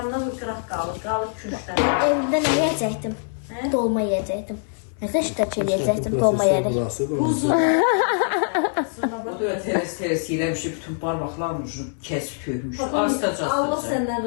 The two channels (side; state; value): right; silent; 63 dB below the other